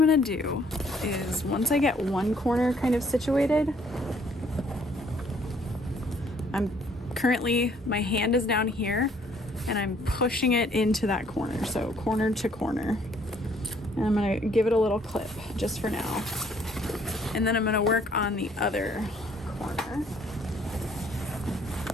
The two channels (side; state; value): both; normal; correlation 0.63